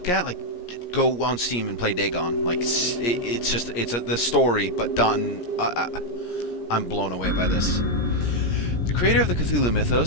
at? Like, go on Steam and play Dagon. Like, it's just, the story, but done. I'm blown away by this. The creator of the Cthulhu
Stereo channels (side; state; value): right; late; 17 ms